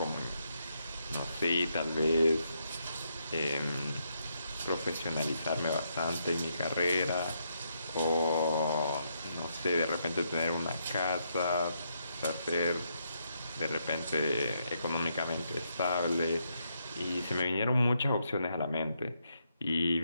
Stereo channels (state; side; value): inverted; both; correlation -0.78